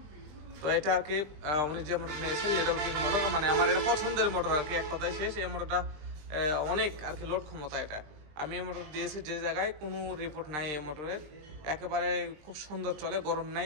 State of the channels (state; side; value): late; left; 20 ms